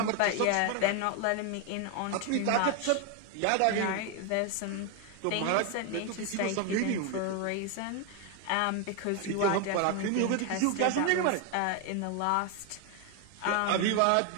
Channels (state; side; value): different; both; correlation 0.01